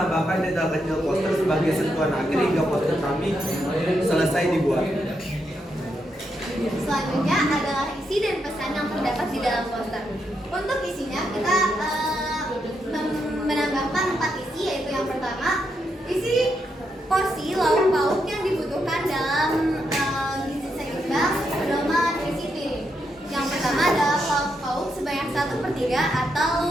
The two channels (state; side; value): normal; both; correlation 0.81